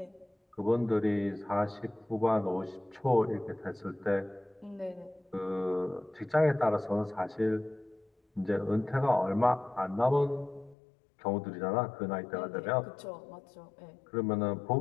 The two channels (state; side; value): drops out; right; at 10.8 s